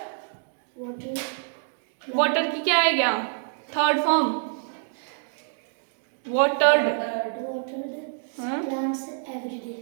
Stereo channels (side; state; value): left; silent; digital silence